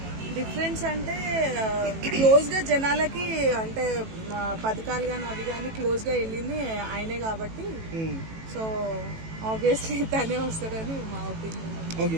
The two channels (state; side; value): late; left; 18 ms